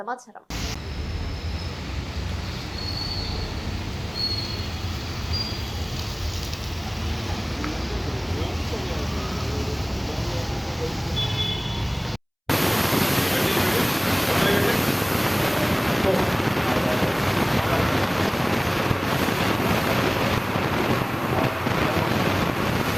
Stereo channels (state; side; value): identical; both; correlation 1.00